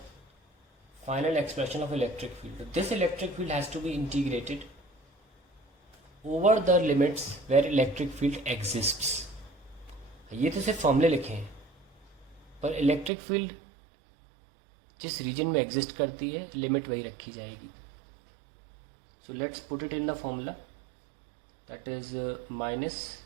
final expression of electric field. This electric field has to be integrated over the limits where electric field exists. ये तो सिर्फ फॉर्मूले लिखे हैं, पर इलेक्ट्रिक फील्ड जिस रीजन में एग्जिस्ट करती है लिमिट वही रखी जाएगी। So let's put it in the formula, that is minus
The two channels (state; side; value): drops out; left; at 13.1 s